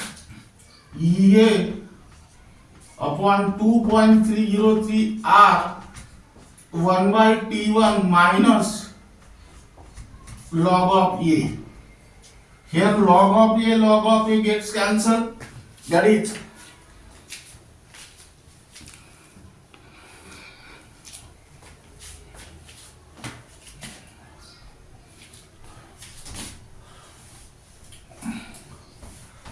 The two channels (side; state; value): both; identical; correlation 1.00